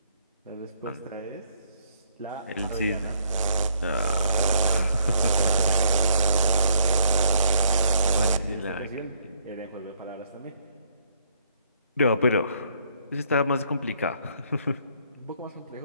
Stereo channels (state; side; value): inverted; both; correlation -0.68